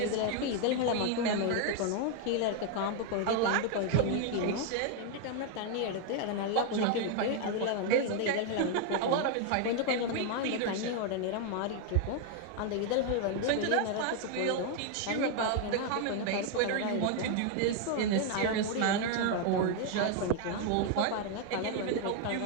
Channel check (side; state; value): both; different; correlation 0.00